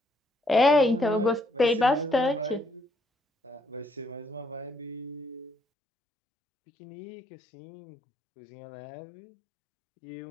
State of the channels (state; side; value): drops out; right; at 5.6 s